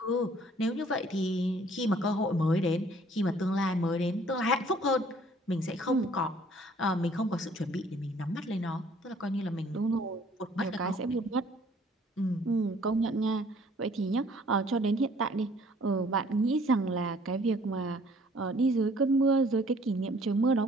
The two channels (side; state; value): both; normal; correlation 0.58